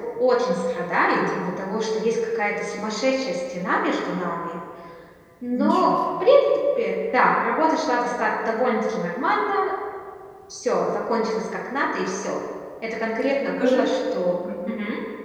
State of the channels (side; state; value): both; identical; correlation 1.00